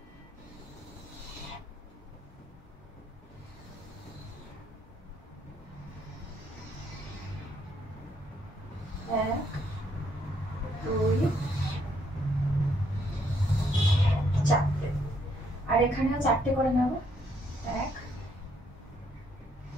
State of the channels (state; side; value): normal; both; correlation 0.71